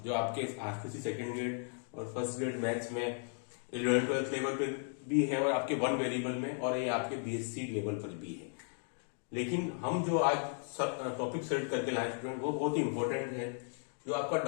जो आपके आरसीसी सेकेंड ग्रेड और फर्स्ट ग्रेड मैथ्स में 11th-12th लेवल पर भी है और आपके वन वेरिएबल में, और ये आपके बीएससी लेवल पर भी है। लेकिन हम जो आज टॉपिक सेलेक्ट करके लाए स्टूडेंट, वो बहुत ही इंपॉर्टेंट है, जो आपका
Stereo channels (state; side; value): silent; right; 54 dB below the other